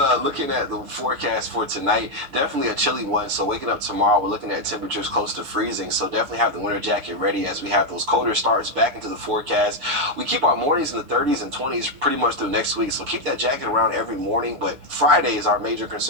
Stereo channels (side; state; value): left; late; 6.8 ms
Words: looking at the forecast for tonight, definitely a chilly one. So waking up tomorrow, we're looking at temperatures close to freezing. So definitely have the winter jacket ready as we have those colder starts back into the forecast. We keep our mornings in the 30s and 20s pretty much through next week. So keep that jacket around every morning. But Friday is our major